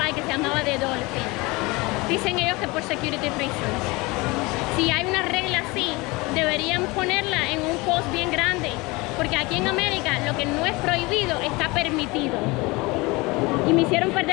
que se llamaba The Dolphin. Dicen ellos que por security reasons. Si hay una regla así, deberían ponerla en un post bien grande, porque aquí en América lo que no es prohibido está permitido. Y me hicieron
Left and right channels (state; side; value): quieter; right; 24.0 dB